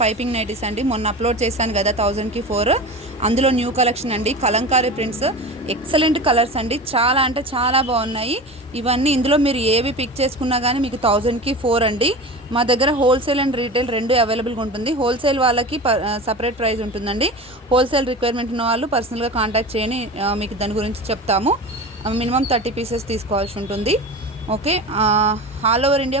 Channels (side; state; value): both; normal; correlation 0.31